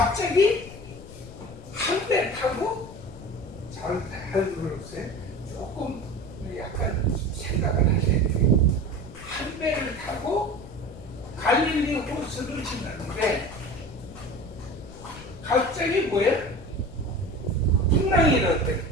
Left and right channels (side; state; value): left; noise; rumble, 16 dB below the sound